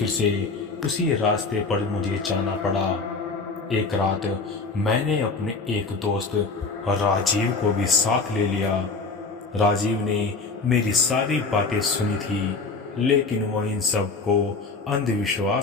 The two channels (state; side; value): quieter; right; 4.1 dB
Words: से उसी रास्ते पर मुझे जाना पड़ा। एक रात मैंने अपने एक दोस्त राजीव को भी साथ ले लिया। राजीव ने मेरी सारी बातें सुनी थी, लेकिन वो इन सब को